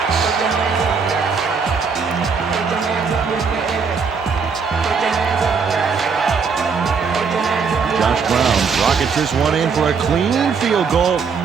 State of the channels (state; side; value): quieter; left; 5.6 dB